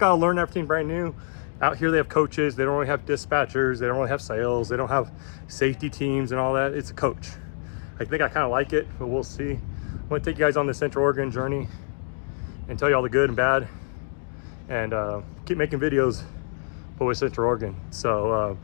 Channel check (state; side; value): silent; right; digital silence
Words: learn everything brand new. Out here they have coaches. They don't really have dispatchers. They don't really have sales. They don't have safety teams and all that. It's a coach. I think I kind of like it, but we'll see. I'm gonna take you guys on the Central Oregon journey and tell you all the good and bad, and keep making videos but with Central Oregon. So